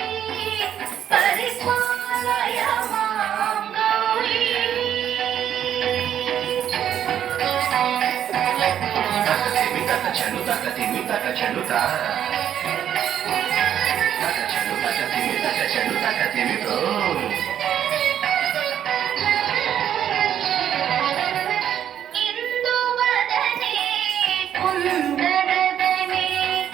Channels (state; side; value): quieter; left; 10.0 dB